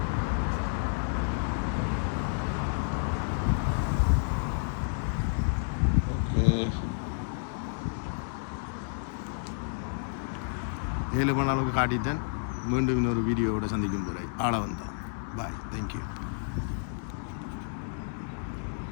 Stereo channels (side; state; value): right; silent; 58 dB below the other